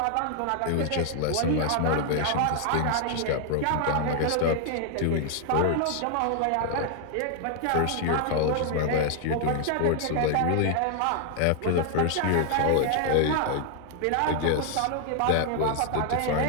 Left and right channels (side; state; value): both; different; correlation 0.00